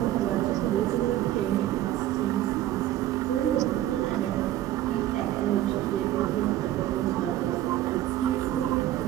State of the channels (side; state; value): left; quieter; 13.6 dB